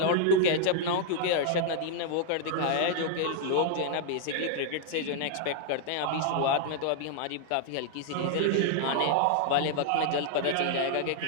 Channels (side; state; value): both; different; correlation 0.00